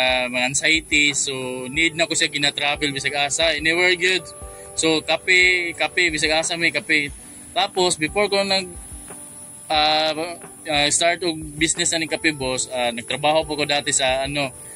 anxiety. So need na ko siya gina-travel bisag asa. Anywhere good. So kape bisag asa may kape. Tapos before ko start og business na ni Kapibos, nagtrabaho po ko dati sa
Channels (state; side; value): identical; both; correlation 1.00